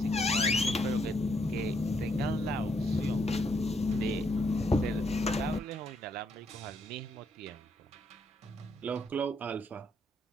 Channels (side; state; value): both; normal; correlation 0.74